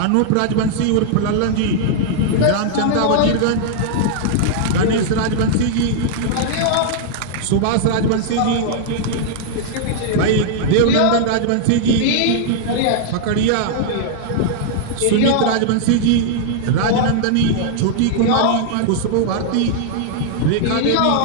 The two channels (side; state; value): both; different; correlation -0.01